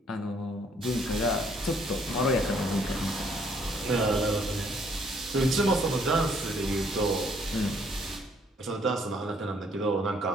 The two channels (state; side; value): normal; both; correlation 0.66